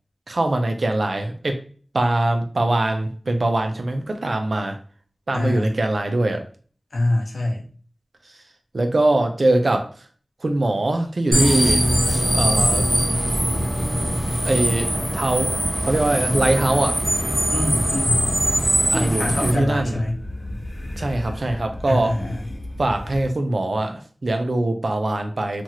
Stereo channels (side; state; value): both; normal; correlation 0.97